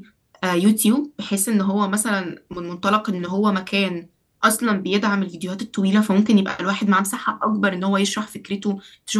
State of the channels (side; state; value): both; identical; correlation 1.00